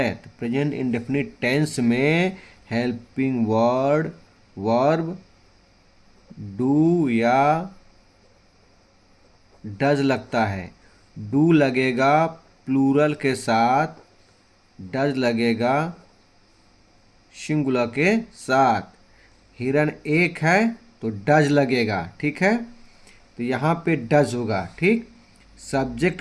तो प्रेजेंट इंडेफिनिट टेंस में हेल्पिंग वर्ड वर्ब डू या डज लगता है। डू लगेगा प्लूरल के साथ, डज लगेगा सिंगुलर के साथ। हिरन एक है तो डज लगेगा, ठीक है। तो यहाँ पे डज होगा, ठीक। सब्जेक्ट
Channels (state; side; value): identical; both; correlation 1.00